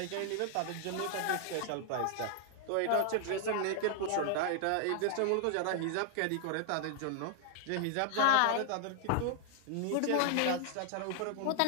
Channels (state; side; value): different; both; correlation 0.00